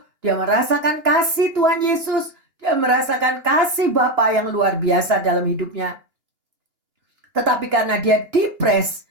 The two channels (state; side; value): late; left; 2.9 ms